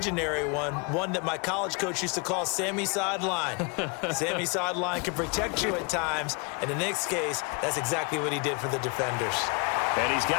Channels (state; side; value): quieter; right; 31.1 dB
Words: one that my college coach used to call Sammy Sideline. Sammy Sideline can protect you at times, and in this case, that's exactly what he did for the defenders. And he's